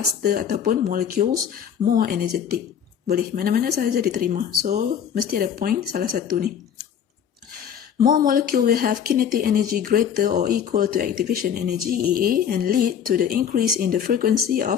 ataupun molecules more energetic. Boleh, mana-mana sahaja diterima. So, mesti ada point salah satu ni. More molecule will have kinetic energy greater or equal to activation energy EA and lead to the increase in the frequency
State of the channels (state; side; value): quieter; right; 8.5 dB